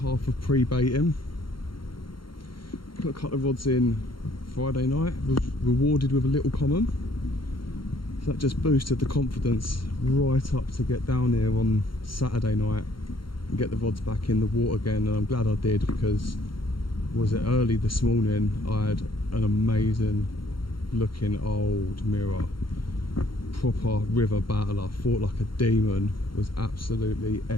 of pre-baiting. Put a couple of rods in Friday night, was rewarded with a little common. So that just boosted the confidence right up to get down here on Saturday night and get the rods back in the water again. And I'm glad I did, because was it early this morning, I had an amazing looking old mirror. Proper river battle. I fought like a demon. It was absolutely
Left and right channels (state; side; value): late; right; 0.73 ms